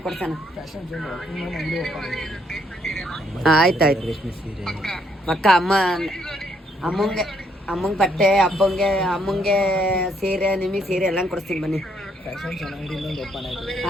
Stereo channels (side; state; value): both; normal; correlation 0.71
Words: ಕೊಡ್ಸೋಣ. ಆಯ್ತಾಯ್ತು ಪಕ್ಕ. ಅಮ್ಮಂಗೆ ಬಟ್ಟೆ, ಅಮ್ಮಂಗೆ ಸೀರೆ, ನಿಮಗೆ ಸೀರೆ ಎಲ್ಲ ಕೊಡಿಸ್ತೀನಿ ಬನ್ನಿ.